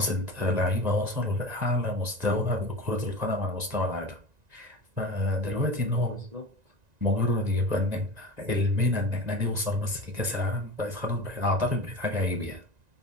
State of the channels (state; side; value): late; left; 1.9 ms